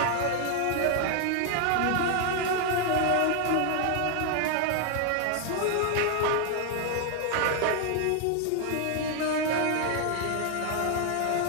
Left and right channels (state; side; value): different; both; correlation 0.00